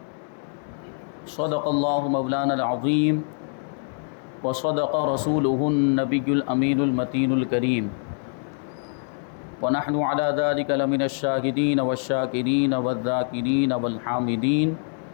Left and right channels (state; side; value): silent; right; 62 dB below the other